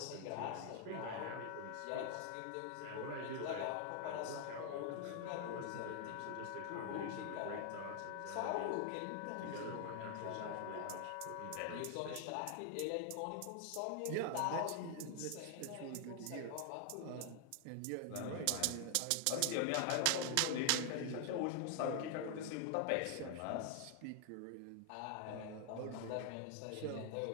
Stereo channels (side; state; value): both; different; correlation 0.00